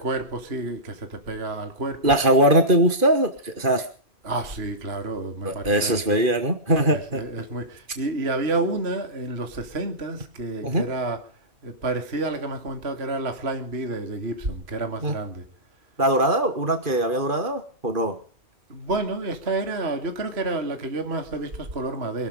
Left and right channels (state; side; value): late; left; 2.4 ms